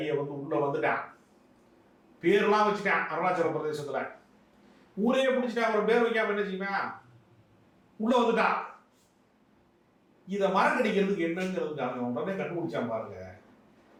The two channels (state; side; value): identical; both; correlation 1.00